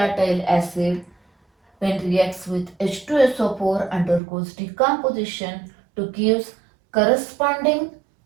acid when reacts with H2SO4 undergoes decomposition to give corresponding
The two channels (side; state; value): left; drops out; at 4.2 s